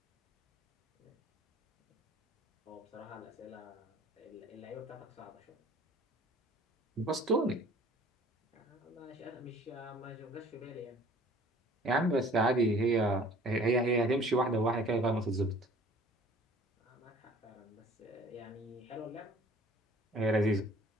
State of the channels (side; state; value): both; normal; correlation 0.51